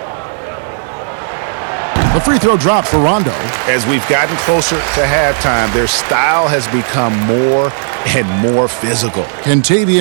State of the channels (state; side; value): silent; left; digital silence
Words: The free throw drop for Rondo. As we've gotten closer to halftime, their style has become more and more physical.